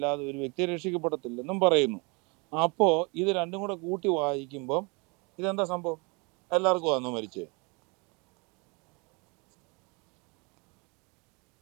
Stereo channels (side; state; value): left; quieter; 30.2 dB